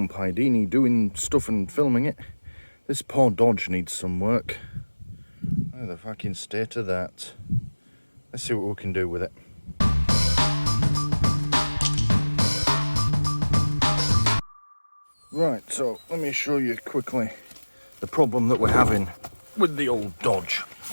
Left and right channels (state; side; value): inverted; both; correlation -1.00